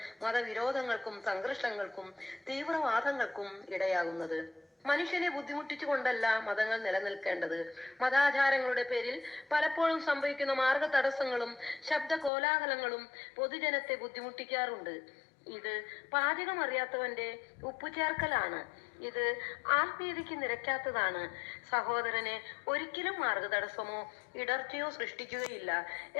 മതവിരോധങ്ങൾക്കും സംഘർഷങ്ങൾക്കും തീവ്രവാദങ്ങൾക്കും ഇടയാകുന്നത്. മനുഷ്യനെ ബുദ്ധിമുട്ടിച്ചുകൊണ്ടല്ല മതങ്ങൾ നിലനിൽക്കേണ്ടത്. മതാചാരങ്ങളുടെ പേരിൽ പലപ്പോഴും സംഭവിക്കുന്ന മാർഗ തടസ്സങ്ങളും ശബ്ദ കോലാഹലങ്ങളും പൊതുജനത്തെ ബുദ്ധിമുട്ടിക്കാറുണ്ട്. ഇത് പാചകം അറിയാത്തവന്റെ ഉപ്പുചേർക്കലാണ്. ഇത് ആത്മീയതയ്ക്ക് നിരക്കാത്തതാണ്. സഹോദരനെ ഒരിക്കലും മാർഗതടസ്സമോ ഇടർച്ചയോ സൃഷ്ടിക്കുകയില്ല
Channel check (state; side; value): drops out; right; at 12.3 s